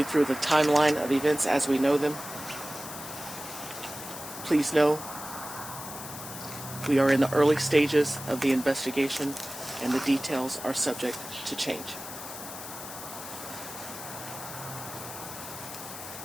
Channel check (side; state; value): left; noise; hiss, 11 dB below the sound